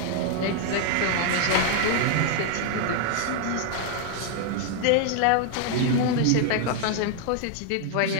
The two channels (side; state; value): both; different; correlation 0.00